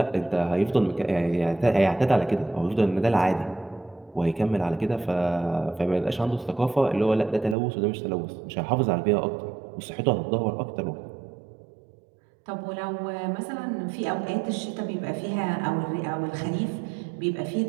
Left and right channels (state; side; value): drops out; left; at 7.6 s